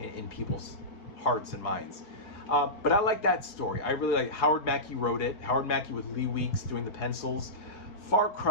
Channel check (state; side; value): late; right; 4.8 ms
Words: people's hearts and minds. But I like that story. I really like Howard Mackie wrote it. Howard Mackie with Lee Weeks doing the pencils. Far